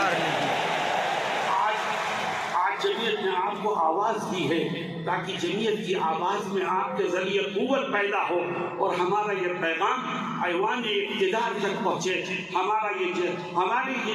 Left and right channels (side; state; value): both; identical; correlation 1.00